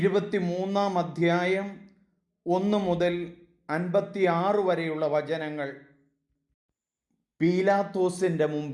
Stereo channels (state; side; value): identical; both; correlation 1.00